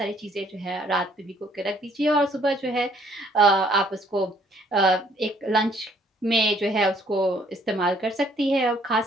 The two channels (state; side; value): normal; both; correlation 0.63